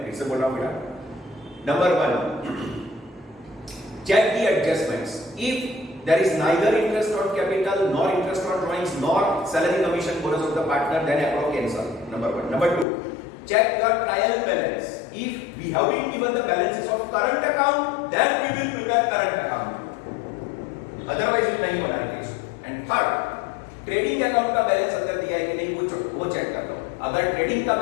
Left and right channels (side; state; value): right; drops out; at 12.9 s